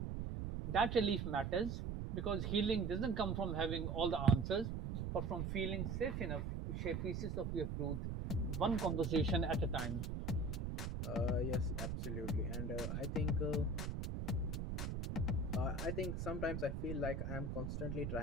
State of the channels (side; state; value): right; noise; rumble, 3 dB below the sound